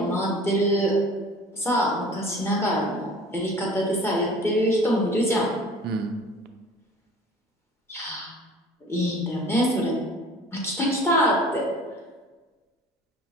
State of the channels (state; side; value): normal; both; correlation 0.46